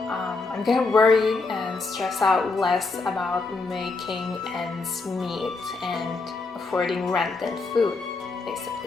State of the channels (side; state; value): right; quieter; 3.9 dB